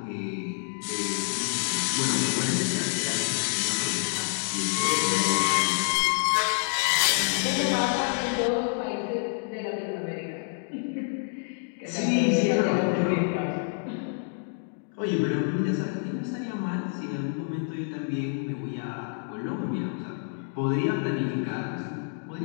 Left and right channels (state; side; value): silent; right; 60 dB below the other